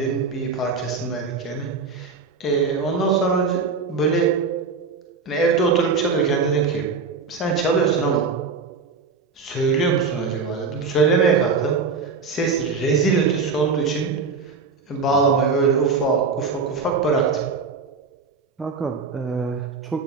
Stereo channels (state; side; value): quieter; left; 4.8 dB